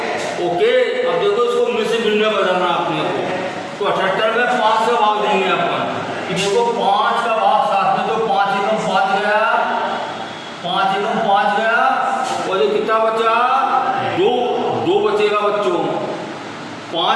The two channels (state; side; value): identical; both; correlation 1.00